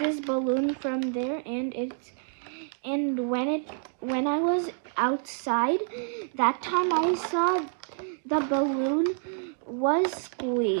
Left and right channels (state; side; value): silent; left; 58 dB below the other